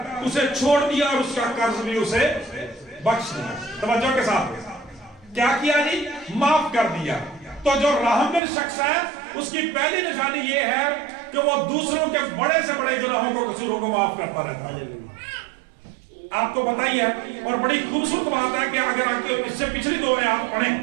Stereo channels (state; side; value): drops out; left; at 8.4 s